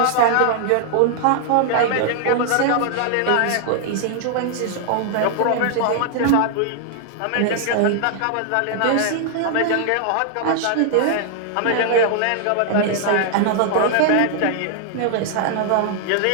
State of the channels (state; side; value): different; both; correlation 0.00